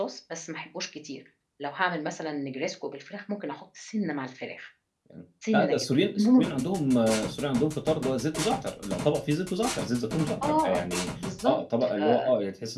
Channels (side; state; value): both; identical; correlation 1.00